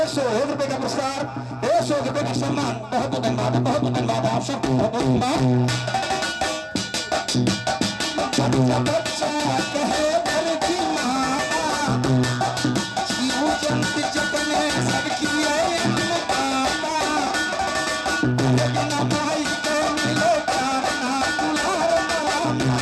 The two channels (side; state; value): both; identical; correlation 1.00